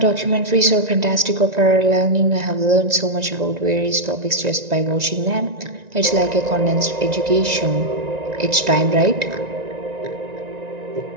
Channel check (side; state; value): left; late; 1.9 ms